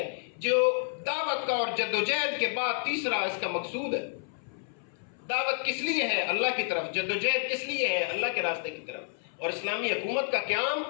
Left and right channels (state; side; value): silent; right; 58 dB below the other